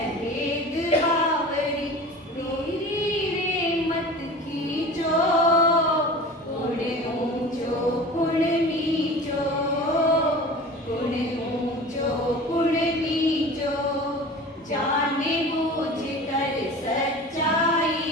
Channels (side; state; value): both; normal; correlation 0.37